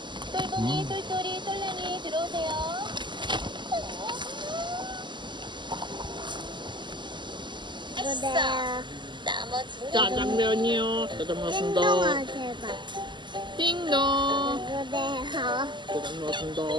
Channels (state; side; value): late; left; 0.22 ms